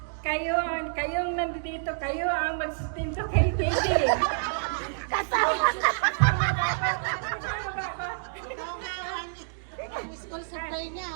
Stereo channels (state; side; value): silent; left; digital silence